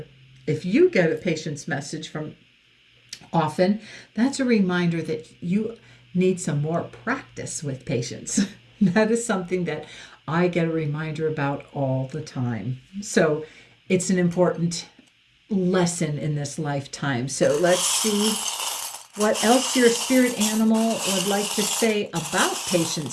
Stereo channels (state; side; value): identical; both; correlation 1.00